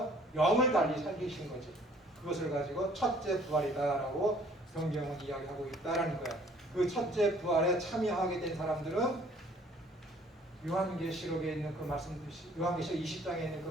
영을 달리 살리신 거지. 그것을 가지고 첫째 부활이다라고 성경은 이야기하고 있다라는 거예요. 그 첫째 부활에 참여하게 된 사람들은 요한계시록에 있는 그 말씀, 요한계시록 20장에 있는 그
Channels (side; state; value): both; normal; correlation 0.57